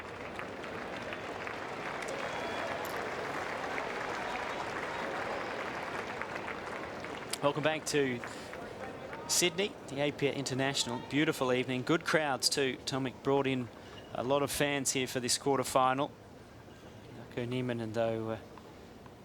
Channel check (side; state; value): both; identical; correlation 1.00